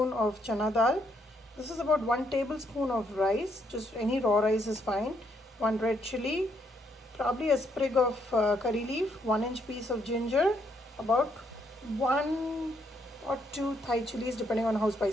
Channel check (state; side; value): normal; both; correlation 0.73